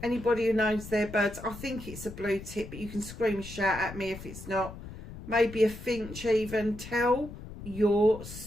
Anybody who knows their birds, I think it's a blue tip, but you can scream and shout at me if it's not. Maybe a finch even. Tell your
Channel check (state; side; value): noise; left; rumble, 13 dB below the sound